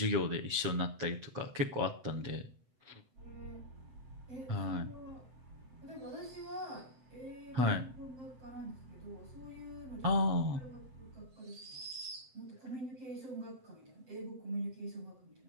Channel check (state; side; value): late; left; 7.9 ms